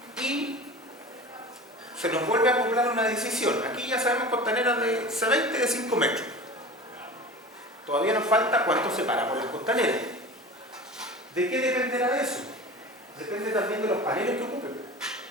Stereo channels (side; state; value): both; normal; correlation 0.35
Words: ¿Ya? Y se nos vuelve a acoplar una decisión. Aquí ya sabemos costaneras de C20 de 5 metros. Todavía nos falta cuánto separamos las costaneras. ¿De qué dependerá eso? Depende también de los paneles que ocupen.